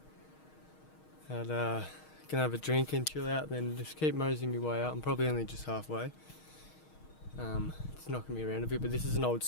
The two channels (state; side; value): late; right; 6.4 ms